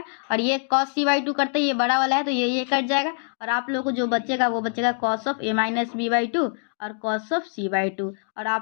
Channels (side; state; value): right; silent; digital silence